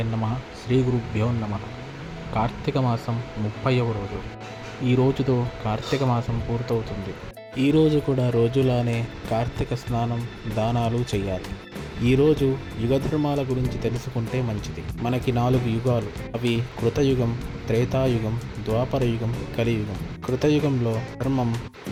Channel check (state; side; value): identical; both; correlation 1.00